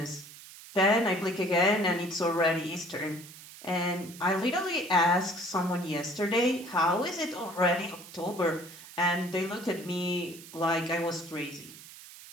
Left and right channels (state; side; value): noise; right; hiss, 17 dB below the sound